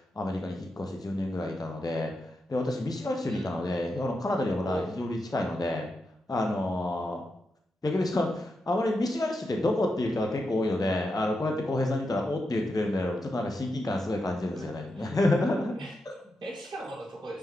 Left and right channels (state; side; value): normal; both; correlation 0.87